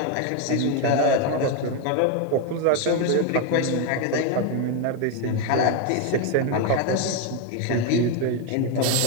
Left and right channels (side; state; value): both; different; correlation 0.01